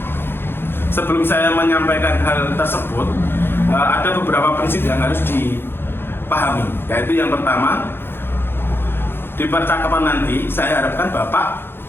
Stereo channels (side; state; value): right; late; 0.11 ms